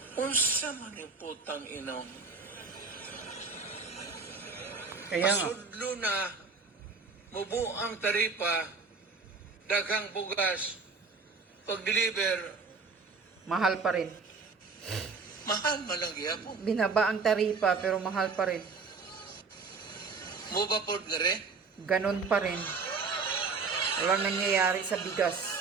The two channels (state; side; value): quieter; left; 4.5 dB